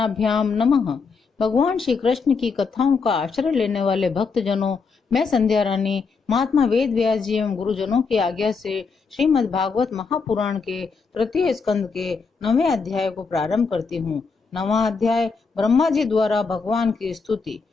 नमः। भगवान श्री कृष्ण की कथाओं का आश्रय लेने वाले भक्त जनों, मैं संध्या रानी महात्मा वेद व्यास जी एवं गुरुजनों की आज्ञा से श्रीमद् भागवत महापुराण के तृतीय स्कंद के 9वें अध्याय को प्रारंभ करती हूँ। 9वां अध्याय ब्रह्मा जी द्वारा भगवान की स्तुति।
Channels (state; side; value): quieter; right; 4.9 dB